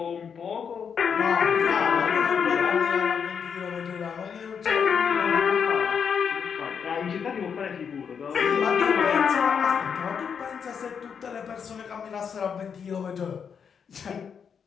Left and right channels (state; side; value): quieter; right; 6.9 dB